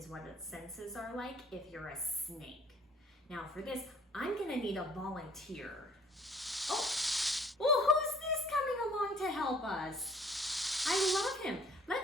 what its senses are like if you're a snake. Now, for this, I'm going to need a volunteer. Oh, well, who's this coming along to help us? I love him.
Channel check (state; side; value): normal; both; correlation 0.57